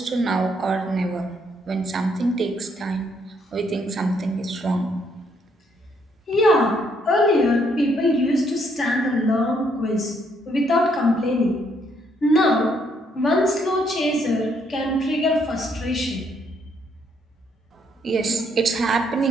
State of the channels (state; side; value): normal; both; correlation 0.71